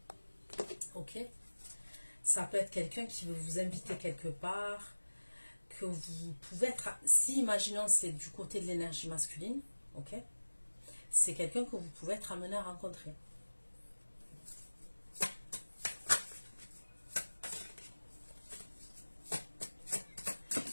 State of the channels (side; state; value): both; inverted; correlation -1.00